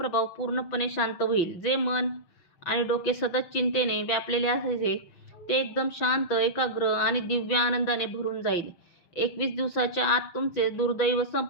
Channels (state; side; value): late; right; 6.1 ms